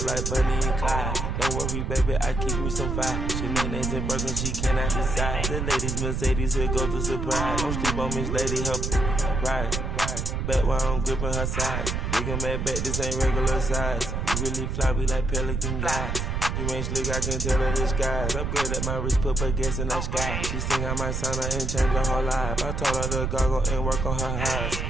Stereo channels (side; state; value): right; noise; rumble, 2 dB below the sound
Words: like Bunny and Clyde. Don't worry, baby, I keep me some fire. She names and broken, she cannot decide. The ladies Mercedes, here goes the surprise. Don't sleep on Miss Lady, help ride. Back while I'm gripping her side. Big and mad back, this ain't regular size. We really fly, we like pelican guys. You ain't slick, I can tell her the skies. Upgrade at my wrist, put her gas in the sky. She think I might sign her and change her whole life. I told her to goggle and work on her highs.